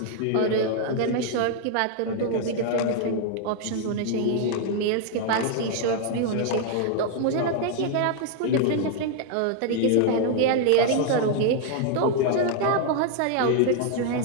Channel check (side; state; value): both; different; correlation 0.00